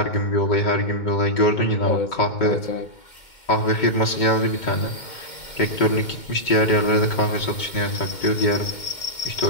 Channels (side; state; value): right; late; 2.2 ms